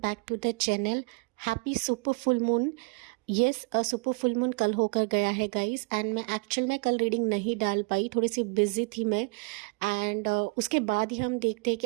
to the channel. Happy super full moon. Yes, super full moon कल होकर गया है guys, and मैं actual में कल रीडिंग नहीं डाल पाई, थोड़ी सी बिजी थी मैं। एंड उसके बाद ही हम देखते हैं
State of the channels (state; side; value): quieter; left; 31.1 dB